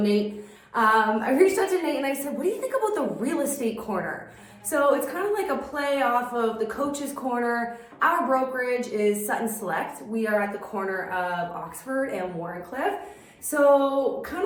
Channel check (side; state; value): both; identical; correlation 1.00